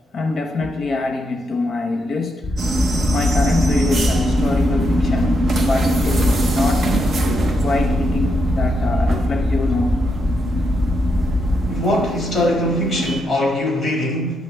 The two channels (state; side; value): normal; both; correlation 0.81